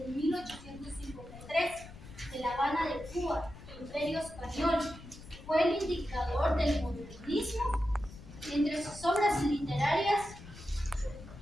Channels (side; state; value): left; noise; rumble, 16 dB below the sound